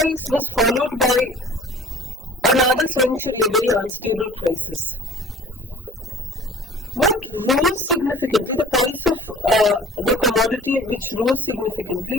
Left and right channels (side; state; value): both; normal; correlation 0.48